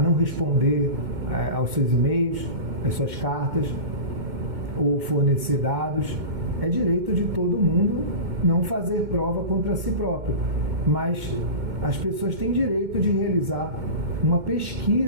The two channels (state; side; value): late; left; 2.2 ms